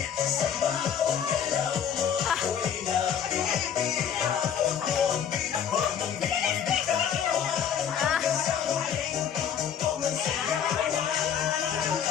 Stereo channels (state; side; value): quieter; right; 8.4 dB